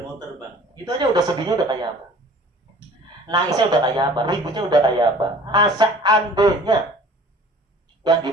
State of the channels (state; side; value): normal; both; correlation 0.48